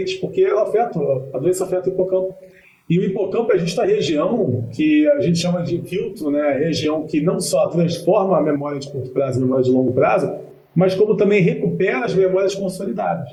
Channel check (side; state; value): both; identical; correlation 1.00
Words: porque ela a doença afeta o hipocampo. E o hipocampo é justa a região que a gente chama de filtro, né? A região que não só transforma a memória de curto prazo em memória de longo prazo, mas como também recupera as memórias